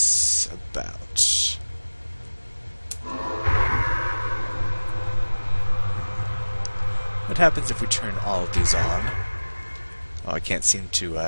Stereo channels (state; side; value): inverted; both; correlation -1.00